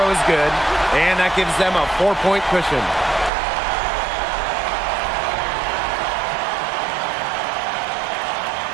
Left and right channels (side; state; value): left; drops out; at 3.3 s